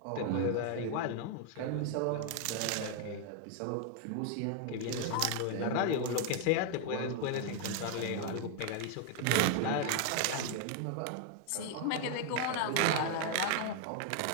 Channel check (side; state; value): both; different; correlation 0.00